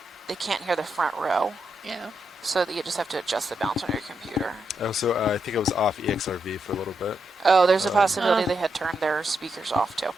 can't hear the front row. Yeah. So that you just have to adjust the balance on your computer. Oh, so I think I was off EXRV for a little bit. Oh, there's a possibility they had turned their speakers off too.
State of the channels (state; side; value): normal; both; correlation 0.83